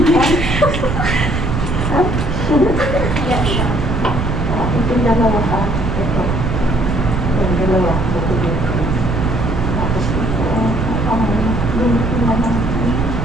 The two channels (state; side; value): noise; right; rumble, 2 dB below the sound